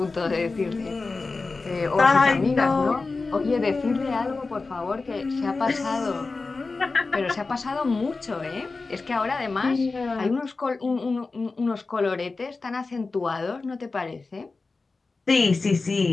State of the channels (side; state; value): right; quieter; 3.9 dB